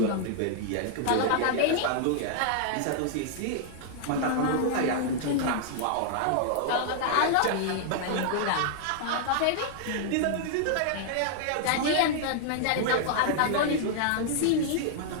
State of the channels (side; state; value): both; different; correlation -0.01